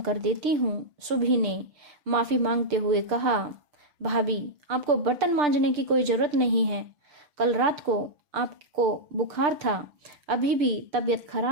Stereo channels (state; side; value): late; left; 6.7 ms